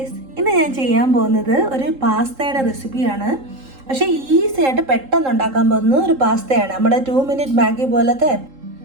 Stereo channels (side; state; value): left; late; 3.8 ms